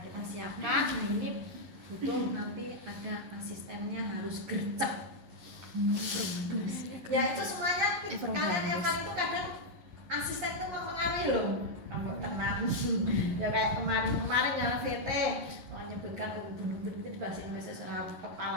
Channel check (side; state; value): left; late; 11 ms